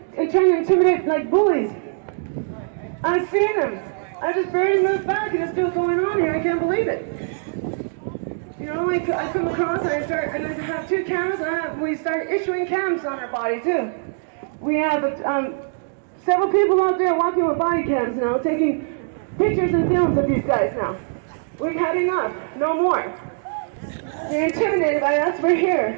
trying to intimidate like bullies. I've seen them. I just barely moved back and it's still going on here. I can't believe it. I come across and I have 2 cameras and we start issuing cams on our body too. We have several people out there walking with body cams now, taking pictures and films of these guys now. We've had enough. No more. They're intimidated by us. We're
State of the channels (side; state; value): left; silent; digital silence